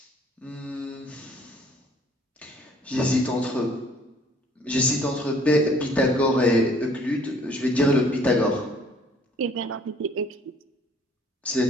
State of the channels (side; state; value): both; normal; correlation 0.58